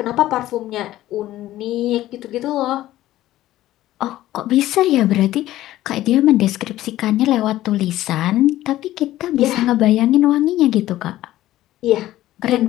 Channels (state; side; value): quieter; right; 14.7 dB